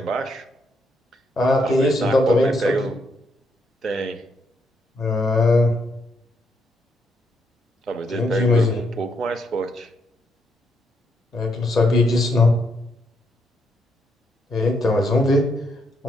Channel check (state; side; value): normal; both; correlation 0.76